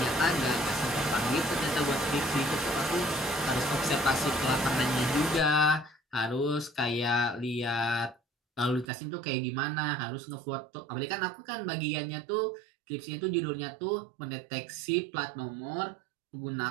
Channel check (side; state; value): left; drops out; at 8.9 s